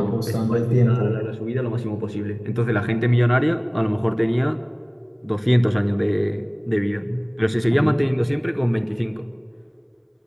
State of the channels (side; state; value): both; identical; correlation 1.00